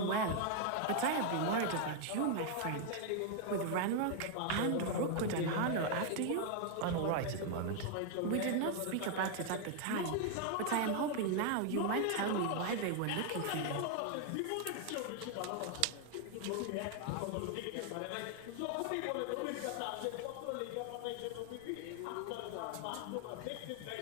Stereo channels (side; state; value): both; different; correlation 0.00